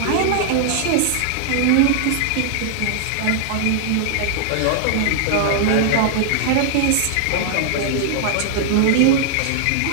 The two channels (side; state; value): both; different; correlation -0.01